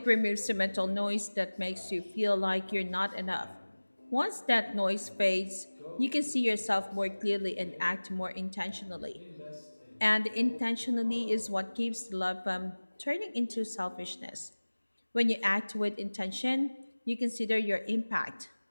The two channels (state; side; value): inverted; both; correlation -1.00